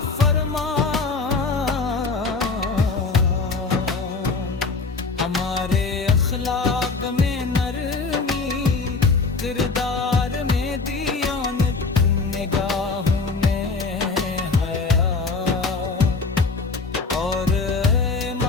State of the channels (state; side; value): quieter; right; 4.2 dB